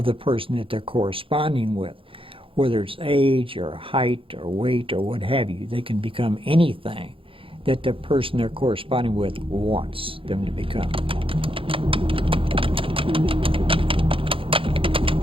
the person that they're corresponding with. Whether it's age or height or weight or what have you, they can become anything that the person they're corresponding with wants them to become.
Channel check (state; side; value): late; left; 0.26 ms